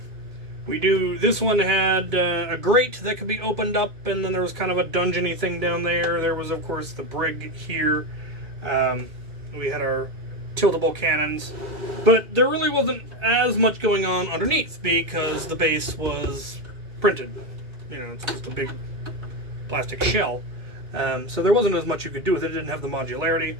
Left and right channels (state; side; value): late; left; 2.3 ms